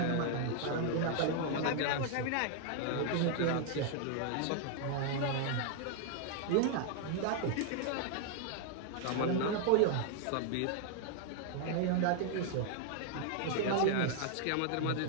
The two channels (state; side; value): different; both; correlation 0.00